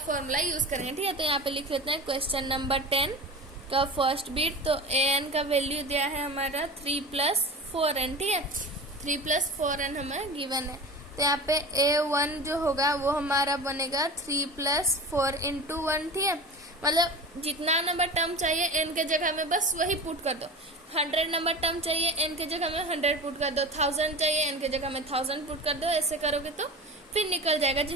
यूज करेंगे। ठीक है, तो यहाँ पे लिख लेते हैं क्वेश्चन नंबर 10 का फर्स्ट बीट। तो AN का वैल्यू दिया है हमारा 3 + 4N। ठीक है, 3 + 4N हमें गिवन है। तो यहाँ पे A1 जो होगा वो हमारा बनेगा 3 + 4 × 1। ठीक है, मतलब जितना नंबर टर्म चाहिए N के जगह में बस वही पुट कर दो। 100 नंबर टर्म चाहिए N के जगह में 100 पुट कर दो, 1000 चाहिए N के जगह में 1000 पुट कर दो। ऐसे करोगे तो फिर निकल जाएगा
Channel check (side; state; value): both; normal; correlation 0.31